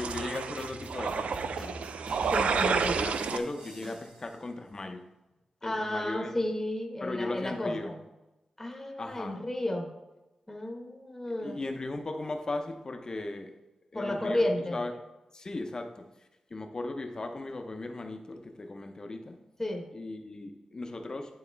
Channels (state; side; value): normal; both; correlation 0.84